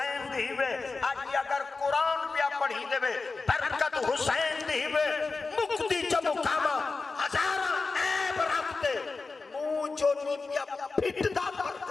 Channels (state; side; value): quieter; right; 4.0 dB